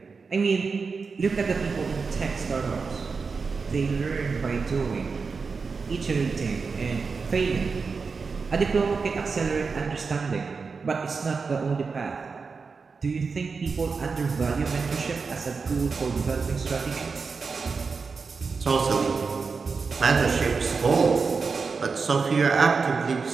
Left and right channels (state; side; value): quieter; left; 4.9 dB